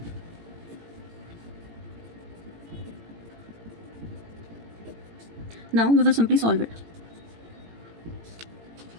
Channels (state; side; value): late; left; 18 ms